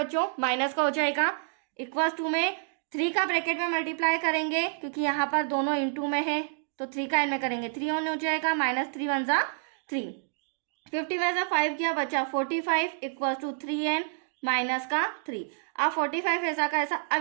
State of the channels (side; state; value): left; silent; digital silence